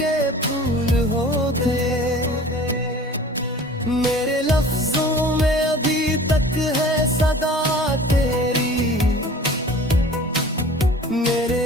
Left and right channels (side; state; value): both; normal; correlation 0.44